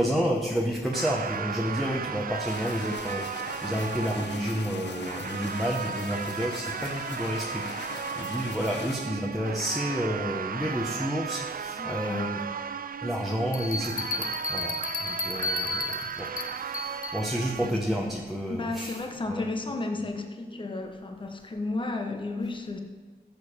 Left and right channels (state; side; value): normal; both; correlation 0.57